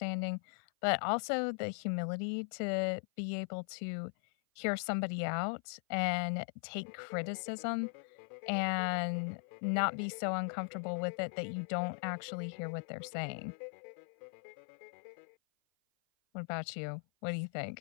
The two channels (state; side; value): silent; right; 52 dB below the other